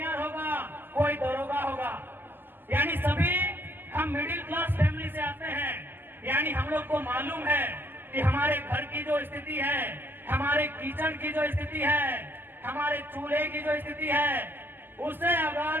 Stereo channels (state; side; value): late; left; 0.093 ms